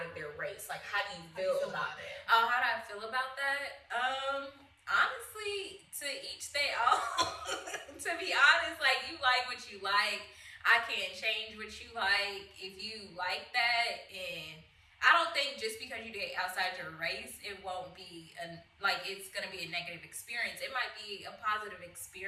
of their race. Like, how do you feel about that? Oh, how do I feel about that? Honestly, to each their own. To be honest, like, you like what you like. I can't change what you like. If you like that, and I don't think just because you date outside your race, it won't be it's gonna be a negative experience. It might be a positive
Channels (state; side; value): identical; both; correlation 1.00